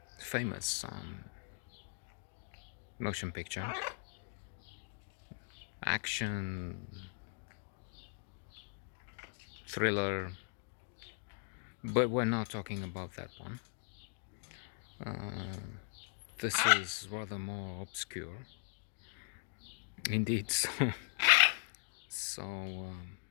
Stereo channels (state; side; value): silent; right; 51 dB below the other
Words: famous motion picture, action, thriller, but we're not talking about that one. This is rather more obscure, indeed, so